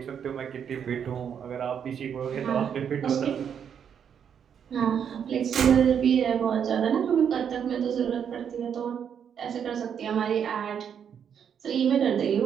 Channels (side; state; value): left; quieter; 8.0 dB